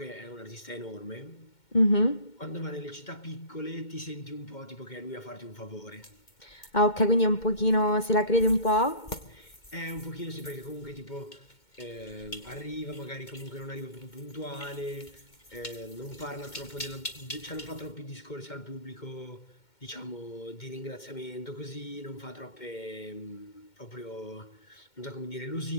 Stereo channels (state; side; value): late; right; 2.2 ms